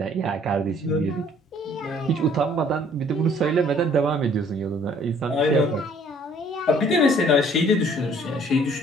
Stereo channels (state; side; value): normal; both; correlation 0.58